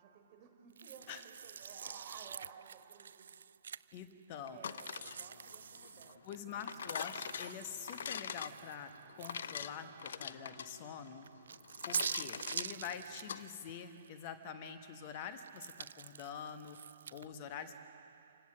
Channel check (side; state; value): both; inverted; correlation -0.56